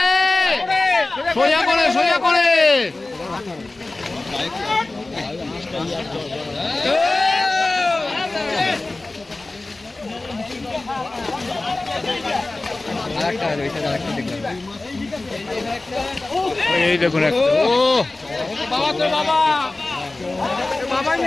সোজা করে সোজা করে। এই দেখুন একটা, ও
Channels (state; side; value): quieter; right; 3.1 dB